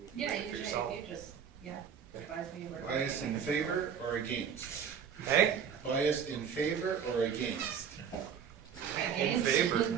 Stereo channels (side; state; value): left; quieter; 7.6 dB